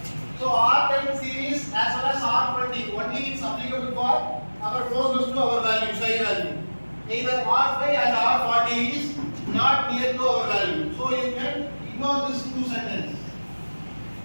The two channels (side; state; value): both; inverted; correlation -1.00